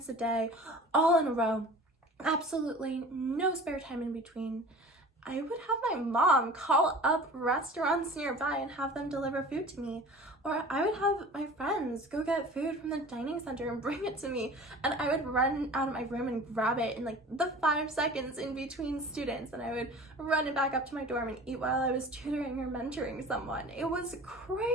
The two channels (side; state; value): both; normal; correlation 0.41